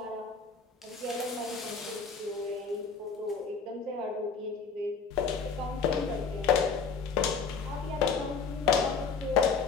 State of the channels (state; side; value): quieter; right; 5.2 dB